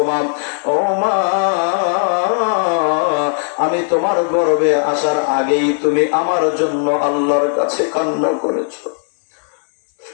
মা। ও মা, আমি তোমার গর্ভে আসার আগেই তুমি আমার জন্য আল্লাহর কাছে কান্না করেছো।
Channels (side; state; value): right; silent; digital silence